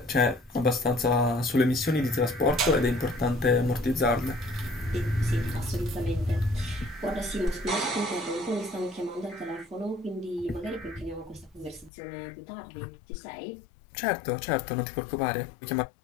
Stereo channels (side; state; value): right; drops out; at 11.9 s